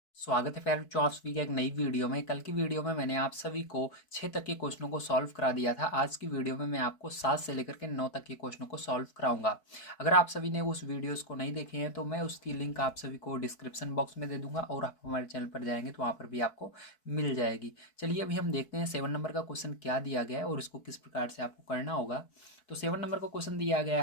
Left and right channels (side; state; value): right; late; 4.6 ms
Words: स्वागत है बच्चों आप सभी का एक नई वीडियो में। कल की वीडियो में मैंने आप सभी को 6 तक के क्वेश्चनों को सॉल्व करा दिया था। आज की वीडियो में मैं आपको 7 से लेकर के 9 तक के क्वेश्चनों को सॉल्व कराऊंगा। अगर आप सभी ने उस वीडियोस को नहीं देखे हैं तो मैं उसकी लिंक आप सभी को डिस्क्रिप्शन बॉक्स में दे दूंगा और आप हमारे चैनल पर जाएंगे तो वहाँ पर भी आपको मिल जाएगी। चलिए अभी हम देखते हैं 7 नंबर का क्वेश्चन क्या दिया गया है और इसको किस प्रकार से आपको करना होगा। तो 7 नंबर का क्वेश्चन दिया गया